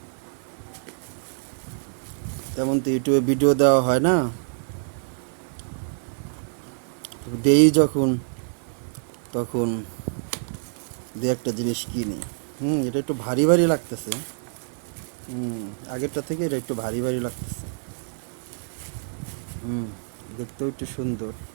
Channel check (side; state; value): left; silent; digital silence